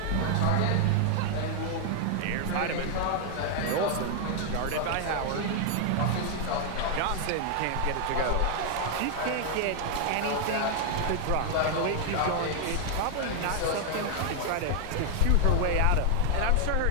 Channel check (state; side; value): different; both; correlation 0.00